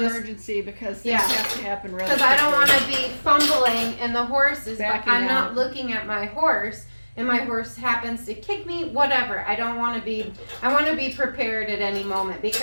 just emergency, because things Yeah. have to happen really because I don't want quickly. to be fumbling and the horse is, Backing I'm not out. looking at my horse and my horse happens to kick me, whatever. I want to be prepared at any moment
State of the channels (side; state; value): both; inverted; correlation -1.00